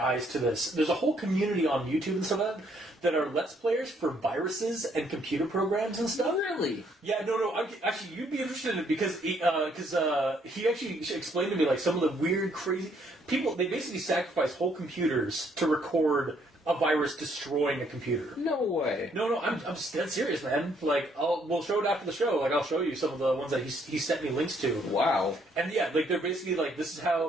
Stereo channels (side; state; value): both; normal; correlation 0.68